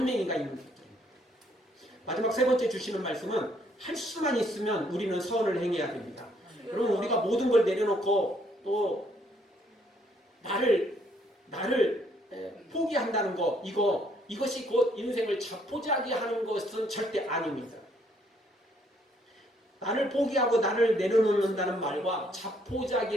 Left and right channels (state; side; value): normal; both; correlation 0.68